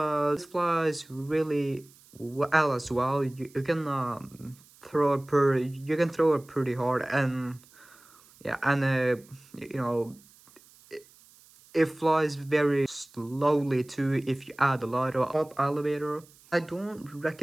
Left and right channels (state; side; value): noise; right; hiss, 26 dB below the sound